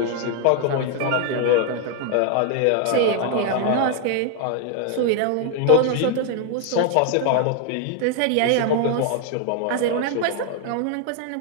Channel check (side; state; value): both; different; correlation 0.00